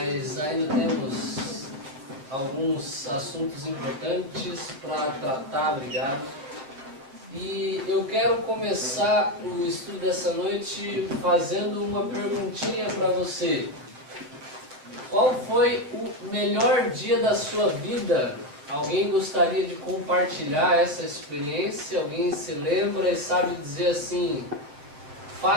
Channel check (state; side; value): late; left; 7.5 ms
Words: ainda temos alguns assuntos importantes para tratar, obrigado. E eu quero começar o estudo dessa noite fazendo uma perguntinha para você. Qual foi o melhor dia da sua vida? Alguém gostaria de compartilhar essa experiência? Alguém se lembra e sabe dizer assim,